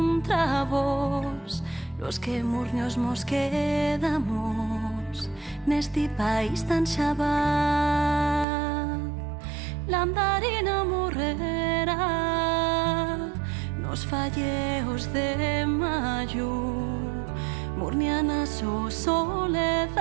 vos, los que murnios mos quedamos neste país tan xabal. La andarina morrerá nos falleos de mayo, murniana su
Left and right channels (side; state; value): left; drops out; at 8.5 s